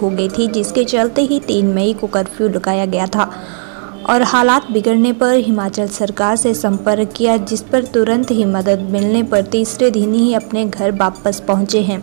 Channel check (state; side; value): silent; left; digital silence